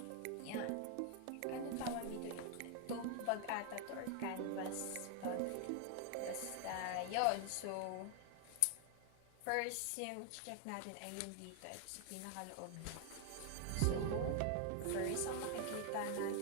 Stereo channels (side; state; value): both; different; correlation 0.00